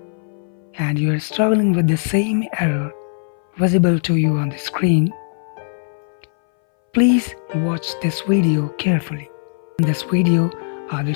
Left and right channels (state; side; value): silent; right; 62 dB below the other